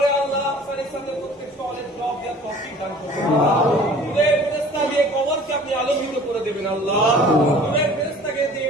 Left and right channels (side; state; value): both; normal; correlation 0.48